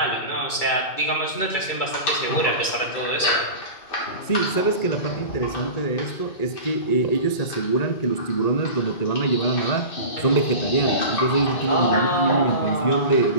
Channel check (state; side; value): late; right; 2.3 ms